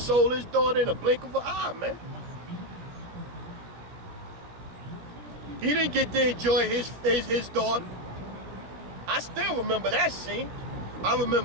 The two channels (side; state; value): left; late; 17 ms